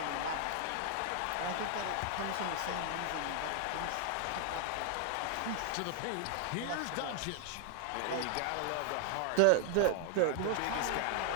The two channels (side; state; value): both; different; correlation 0.00